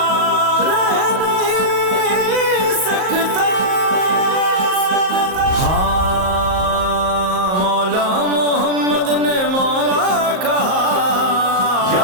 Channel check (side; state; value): left; late; 38 ms